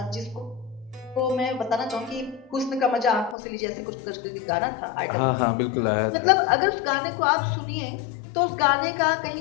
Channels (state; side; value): drops out; right; at 3.4 s